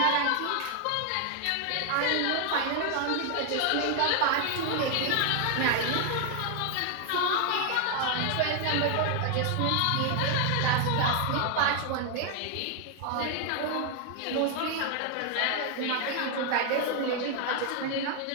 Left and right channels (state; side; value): different; both; correlation 0.00